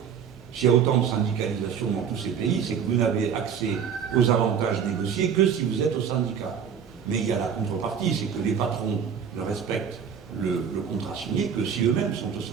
S'il y a autant de syndicalisation dans tous ces pays, c'est que vous n'avez accès aux avantages négociés que si vous êtes au syndicat. Mais il y a la contrepartie, c'est que les patrons ne respectent le contrat signé que si eux-mêmes sont au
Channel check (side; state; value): left; quieter; 7.4 dB